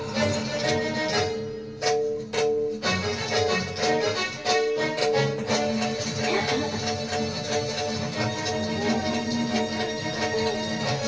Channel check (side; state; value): both; identical; correlation 1.00